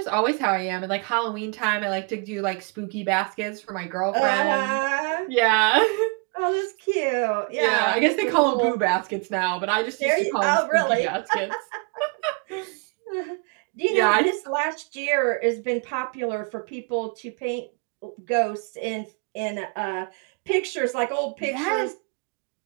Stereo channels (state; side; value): quieter; left; 34.6 dB